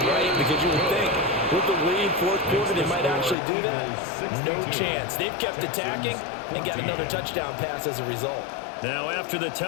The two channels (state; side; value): drops out; right; at 3.4 s